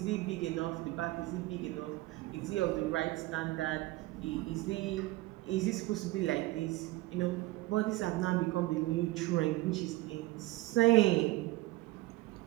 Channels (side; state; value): left; quieter; 19.0 dB